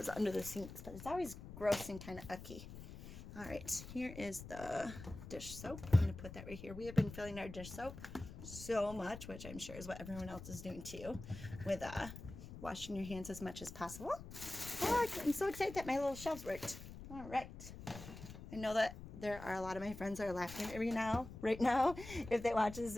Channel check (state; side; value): noise; left; rumble, 12 dB below the sound